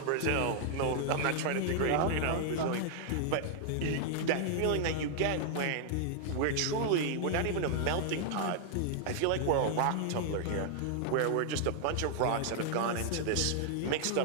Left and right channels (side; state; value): both; different; correlation -0.01